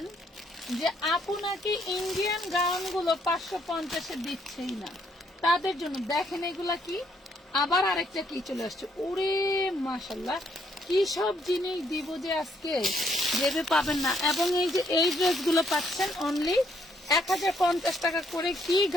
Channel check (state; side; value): normal; both; correlation 0.71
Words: যে আপু নাকি ইন্ডিয়ান গাউন গুলো 550-এ দিচ্ছেই না, তাদের জন্য দেখেন এগুলা কি, আবার আরেকটা কি চলে আসছে। ওরে মাশাল্লাহ, কি সব জিনিস দিব যে আজকে ভেবে পাবেন না। এবং এই যে এই ড্রেসগুলো পাচ্ছেন অনলি 1050 টাকা করে। কি